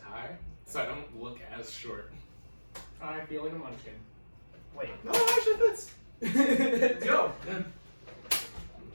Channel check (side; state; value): both; inverted; correlation -1.00